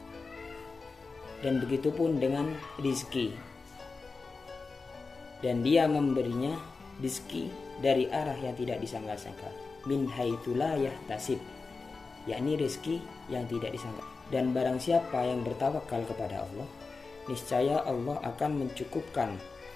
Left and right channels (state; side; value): quieter; right; 4.2 dB